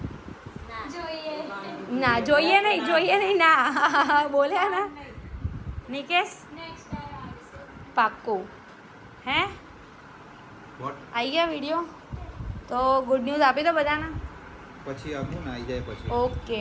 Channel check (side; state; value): both; identical; correlation 1.00